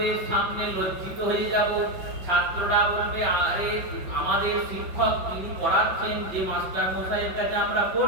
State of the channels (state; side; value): late; left; 5.5 ms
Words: সামনে লজ্জিত হয়ে যাব। ছাত্ররা বলবে, আরে আমাদের শিক্ষক তিনি পড়াচ্ছেন, যে মাস্টার মশাইয়ের কাছে আমরা